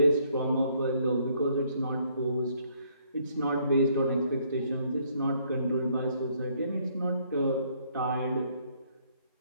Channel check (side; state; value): both; inverted; correlation -0.67